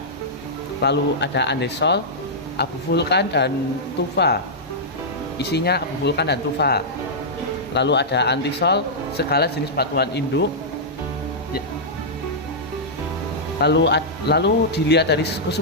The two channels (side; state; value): both; normal; correlation -0.11